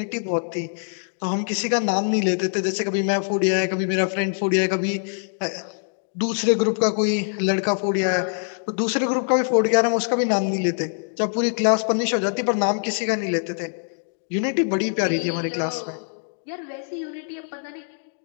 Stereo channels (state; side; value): silent; right; 63 dB below the other